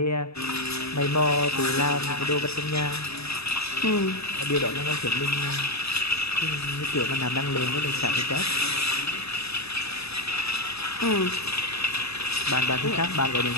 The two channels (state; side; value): late; right; 0.78 ms